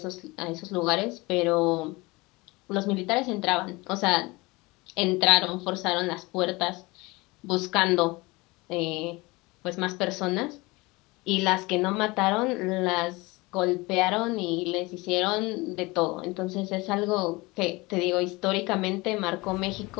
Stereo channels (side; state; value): right; quieter; 23.5 dB